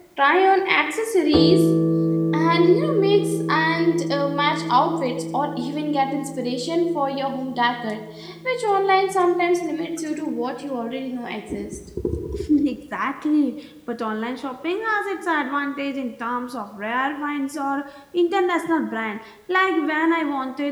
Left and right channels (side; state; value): both; identical; correlation 1.00